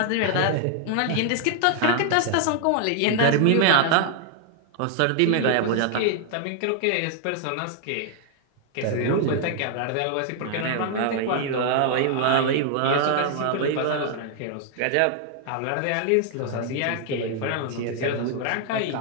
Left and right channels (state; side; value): different; both; correlation 0.00